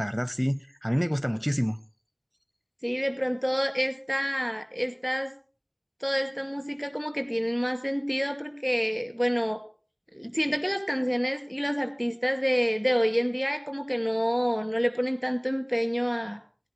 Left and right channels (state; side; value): identical; both; correlation 1.00